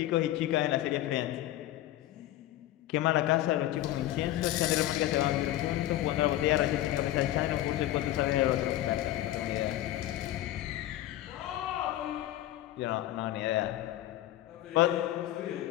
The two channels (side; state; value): right; quieter; 14.2 dB